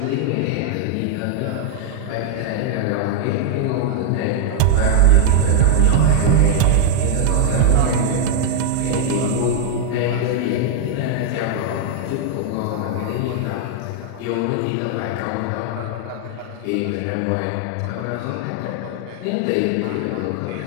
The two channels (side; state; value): both; different; correlation -0.01